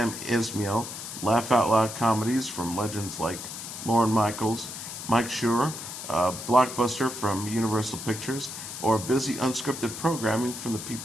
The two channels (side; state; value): left; noise; hiss, 9 dB below the sound